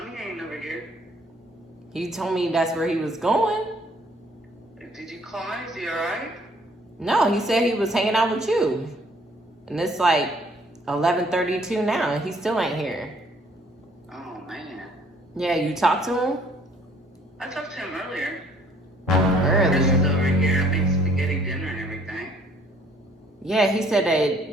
ain't over here. He told me that's where he was going. Did you call him? Is he alright? No, he said he was hanging out with you. And it's like 11:32 now, and he still ain't here. Oh, man. Yeah, you talked to him? I talked to him earlier. Chris Earlier. is over here. I made spaghetti dinner and everything. Yeah, he said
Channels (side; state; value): both; normal; correlation 0.61